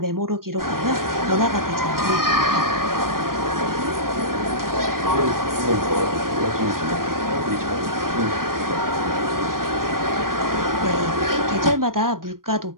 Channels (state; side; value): late; left; 0.91 ms